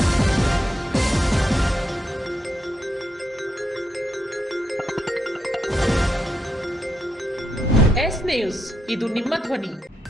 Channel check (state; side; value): normal; both; correlation 0.81